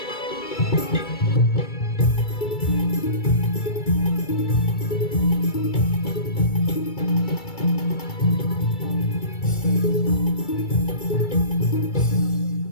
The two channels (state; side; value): late; right; 2.3 ms